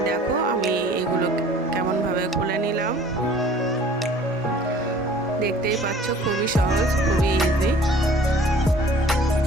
দেখো আমি এগুলো কেমনভাবে খুলে নিলাম। দেখতেই পাচ্ছ, খুবই সহজ, খুবই ইজি।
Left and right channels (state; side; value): normal; both; correlation 0.50